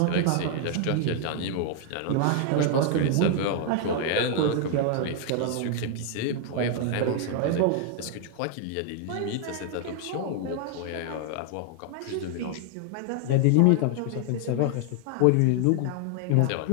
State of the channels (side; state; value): both; different; correlation 0.00